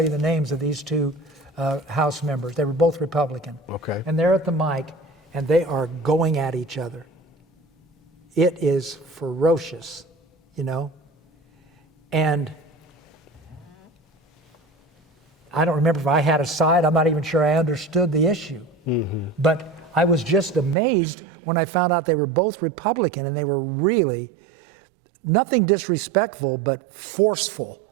you the names of these two House members. They were both Republican. Okay. And they're at the mic, and they are going at each other. It is ferocious, And I don't remember if I had a side. I'm not even sure I understood the issue. Mm-hmm. But I was just amazed when I found out they were both Republican, and they were really nothing disrespectful, but forceful.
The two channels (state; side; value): drops out; left; at 20.8 s